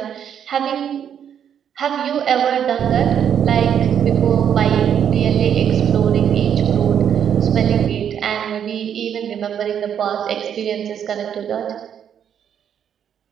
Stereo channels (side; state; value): left; quieter; 8.8 dB